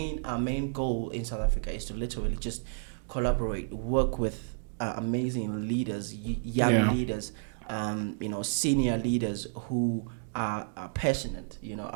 goal in South Africa is to literally just collaborate, work with amazing leaders, young Yeah. leaders, senior leaders who are passionate,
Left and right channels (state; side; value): silent; left; digital silence